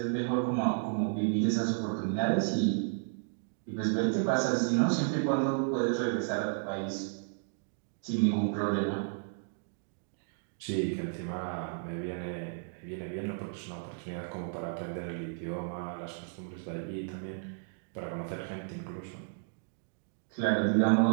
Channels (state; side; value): silent; left; digital silence